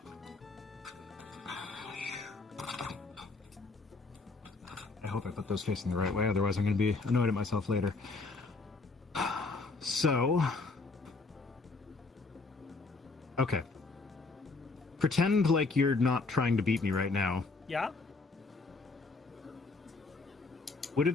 I hope I put those facing the right way, otherwise I'm going to be annoyed at myself later. So, okay. Pretend like you're not trying to beat me right now. Yeah? Would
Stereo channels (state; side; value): quieter; right; 3.7 dB